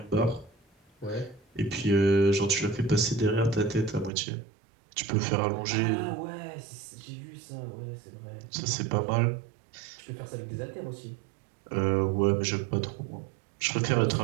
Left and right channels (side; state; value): left; drops out; at 4.1 s